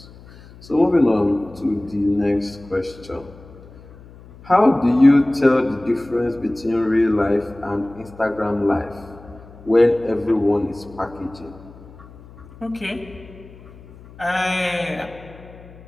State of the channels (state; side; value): noise; left; hum, 21 dB below the sound